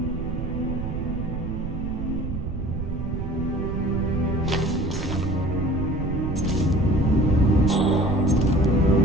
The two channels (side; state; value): right; noise; rumble, 4 dB below the sound